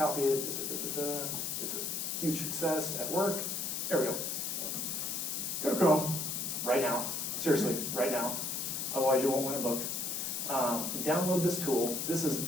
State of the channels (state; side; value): noise; left; hiss, 2 dB below the sound